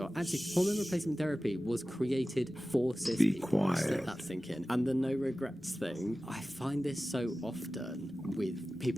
Actually, hormone replacement therapy was created for cis people. Quiet. Let that sink in. And the no regrets thing, I find this so often with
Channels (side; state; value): both; normal; correlation 0.96